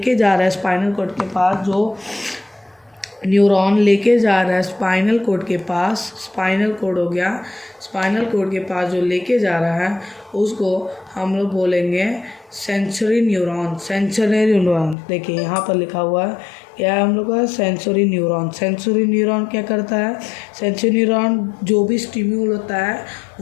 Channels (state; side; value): drops out; right; at 15.0 s